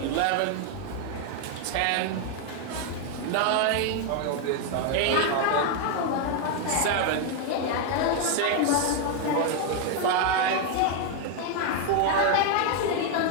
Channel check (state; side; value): different; both; correlation 0.01